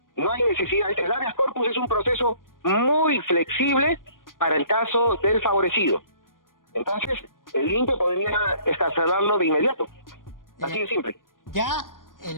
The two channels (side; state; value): right; late; 0.90 ms